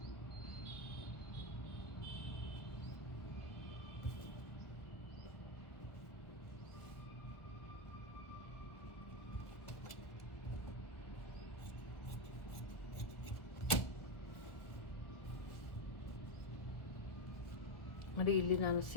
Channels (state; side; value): late; right; 1.6 ms